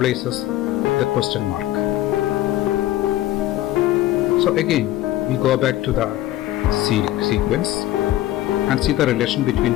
the question mark? So again we go back to the sequence and see the relation between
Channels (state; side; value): quieter; right; 14.9 dB